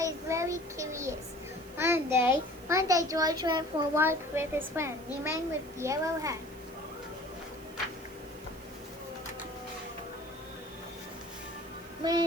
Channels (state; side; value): noise; right; hiss, 21 dB below the sound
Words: very curious. One day George went for a walk with his friend, the man with the yellow hat.